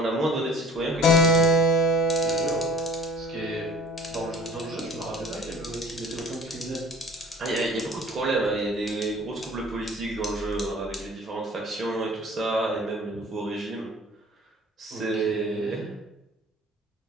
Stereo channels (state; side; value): normal; both; correlation 0.47